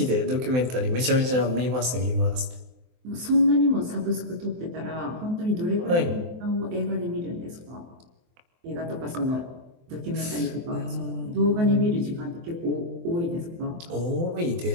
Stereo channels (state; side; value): late; left; 23 ms